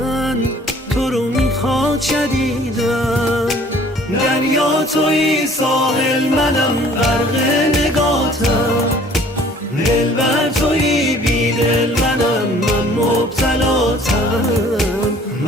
تو رو میخواد شدیدن. دریا توی ساحل منم غرق نگاتم، دلبر توی بیدل منم من مبتلاتم.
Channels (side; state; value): both; normal; correlation 0.54